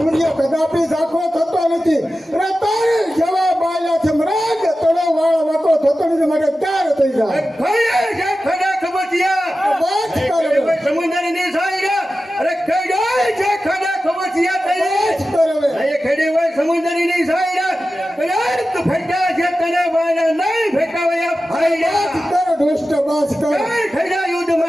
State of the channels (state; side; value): normal; both; correlation 0.94